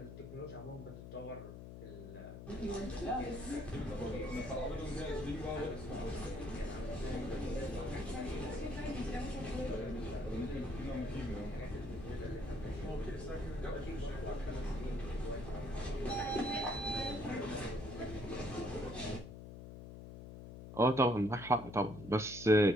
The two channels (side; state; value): left; noise; hum, 11 dB below the sound